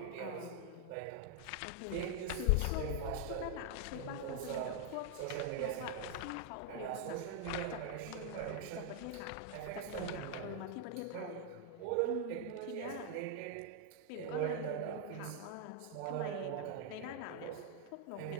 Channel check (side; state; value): both; different; correlation 0.00